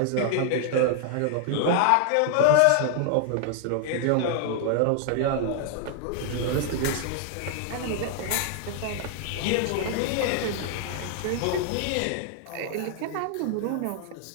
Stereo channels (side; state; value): both; different; correlation 0.00